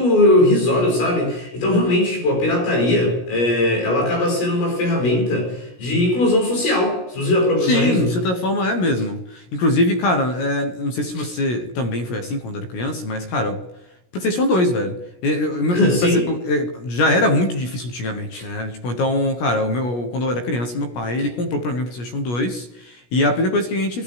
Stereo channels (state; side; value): late; right; 17 ms